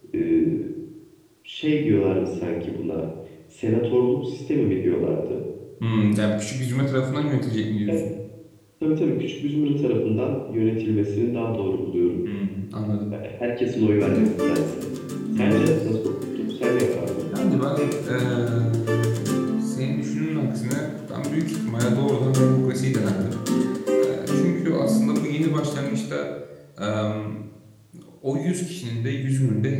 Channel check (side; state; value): both; identical; correlation 1.00